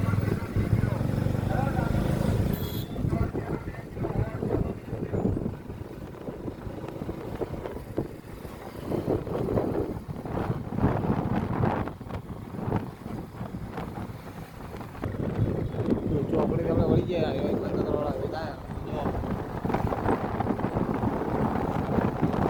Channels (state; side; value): identical; both; correlation 1.00